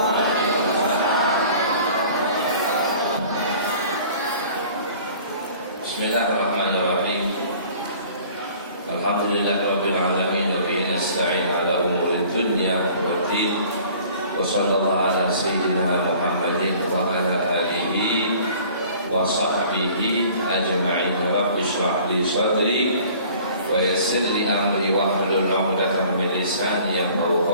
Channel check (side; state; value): both; inverted; correlation -0.50